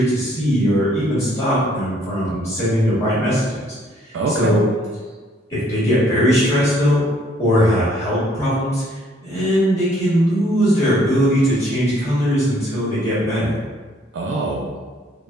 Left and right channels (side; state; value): both; normal; correlation 0.64